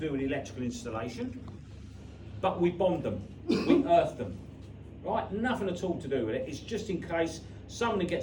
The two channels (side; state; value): both; identical; correlation 1.00